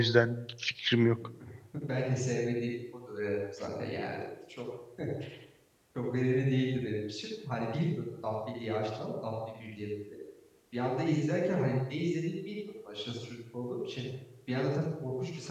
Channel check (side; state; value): both; identical; correlation 1.00